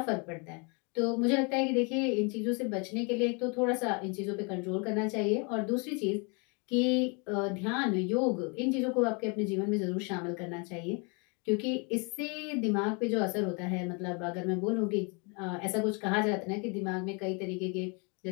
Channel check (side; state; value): right; quieter; 33.2 dB